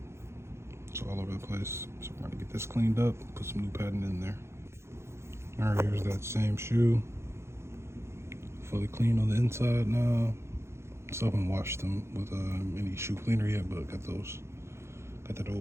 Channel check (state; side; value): late; left; 0.13 ms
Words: It's all over the place. So we're gonna get this cleaned up, put some new padding in there. Alright, here's that same shoe. Fully clean on the inside now. Still haven't washed them with any shoe cleaner yet, but got that